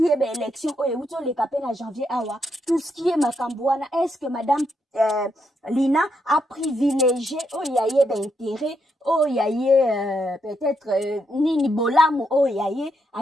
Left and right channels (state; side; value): normal; both; correlation 0.79